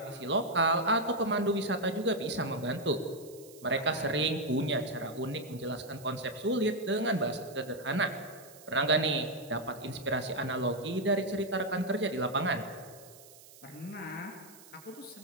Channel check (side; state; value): right; noise; hiss, 21 dB below the sound